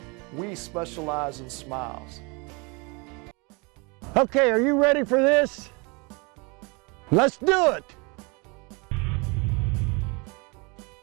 we specialize in smiles. Okay, are you ready for this? Let's do it!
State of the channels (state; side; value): quieter; left; 29.8 dB